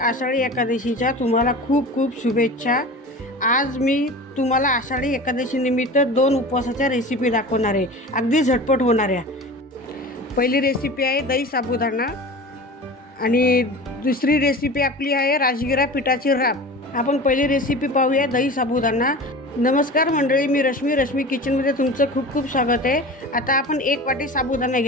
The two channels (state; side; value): normal; both; correlation 0.35